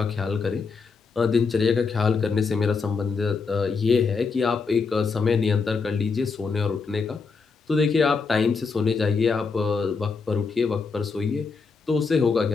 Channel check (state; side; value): quieter; right; 4.9 dB